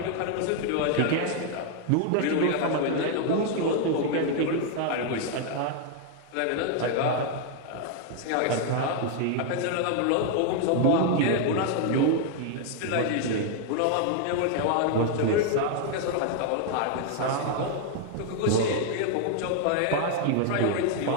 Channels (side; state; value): both; different; correlation 0.00